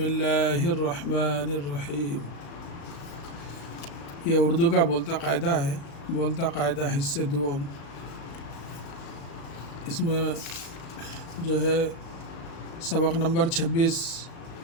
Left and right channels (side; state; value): right; late; 36 ms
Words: रहमानिर रहीम। ये उर्दू का बोलता कायदा है। बोलता कायदा हिस्से दुआम। इसमें जो है सबक नंबर 26